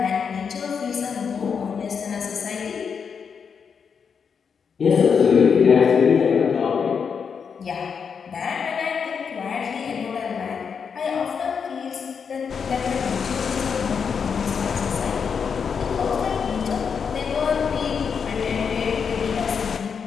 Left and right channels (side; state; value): right; quieter; 6.4 dB